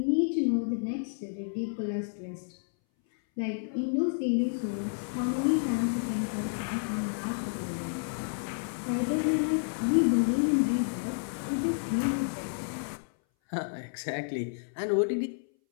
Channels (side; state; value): right; silent; 58 dB below the other